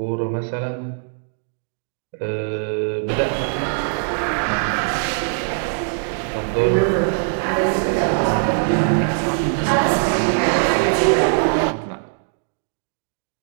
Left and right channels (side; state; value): left; silent; digital silence